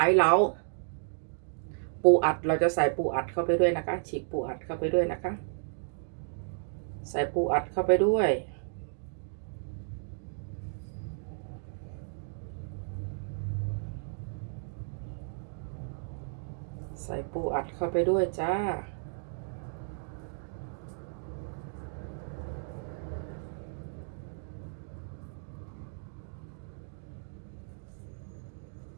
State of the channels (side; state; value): left; silent; digital silence